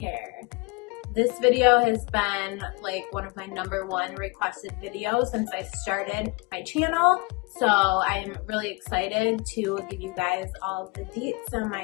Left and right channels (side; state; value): right; quieter; 27.0 dB